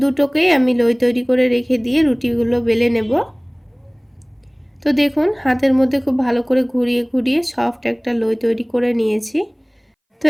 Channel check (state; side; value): identical; both; correlation 1.00